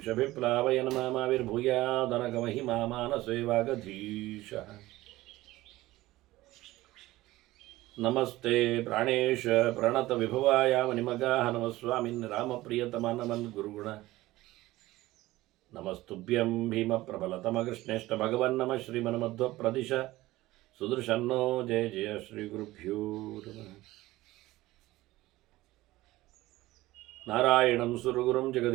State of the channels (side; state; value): left; quieter; 17.7 dB